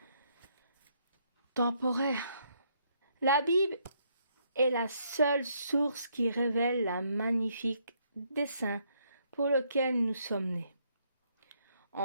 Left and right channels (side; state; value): both; inverted; correlation -0.72